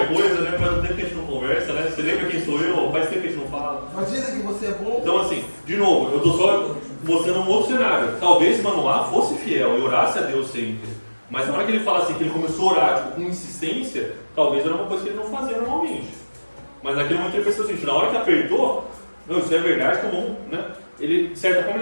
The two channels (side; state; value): both; inverted; correlation -1.00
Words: coisa, né? Faz um tempo que a gente não conversa, né? Você lembra quem sou eu? Faz tempo que a gente não fala. Mas dizem que você é bom. Então assim, de novo, eu estou só mostrando um outro cenário. Talvez Manoá fosse fiel e orasse a Deus sempre. Mas na hora que ele fala assim, que ele começou a orar tipo, com insistência, talvez era uma coisa que ele não fazia normalmente. Mas naquele momento ele pensou assim, na hora que apertou, não, isso é verdade, tá bom, né? Ele, de certa forma,